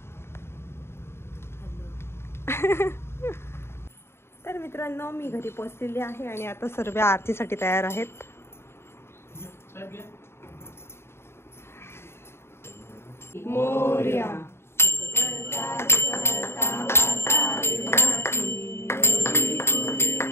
तर मित्रांनो मी घरी पोहोचलेली आहे आणि आता सर्व आरतीसाठी तयार आहेत. मोरया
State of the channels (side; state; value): right; late; 0.12 ms